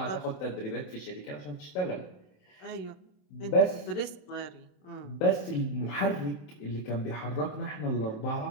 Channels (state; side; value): late; right; 27 ms